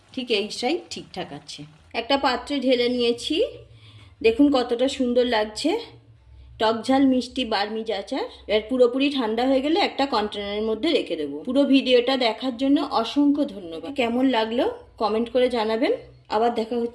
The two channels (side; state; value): both; identical; correlation 1.00